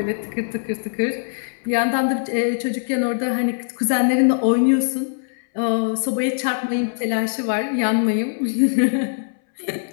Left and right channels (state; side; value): silent; right; 62 dB below the other